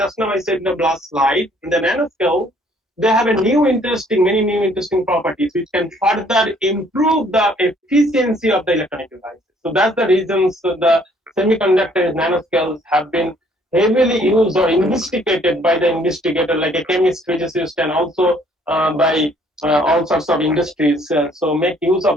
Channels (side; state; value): both; normal; correlation 0.62